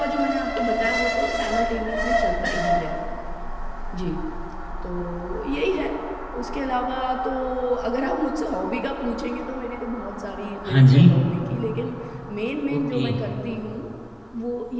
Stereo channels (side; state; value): both; identical; correlation 1.00